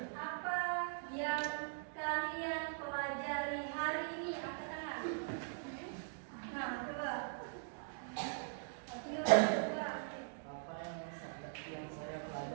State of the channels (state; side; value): silent; left; digital silence